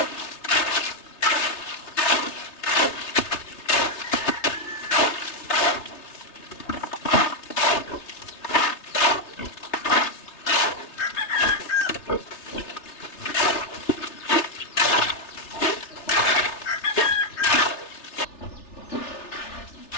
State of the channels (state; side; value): late; right; 3.3 ms